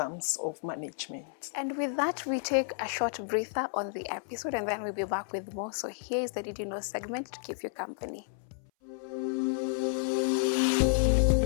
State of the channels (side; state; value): right; silent; 56 dB below the other